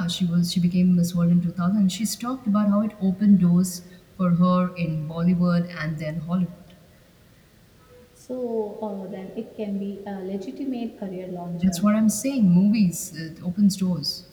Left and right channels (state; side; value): identical; both; correlation 1.00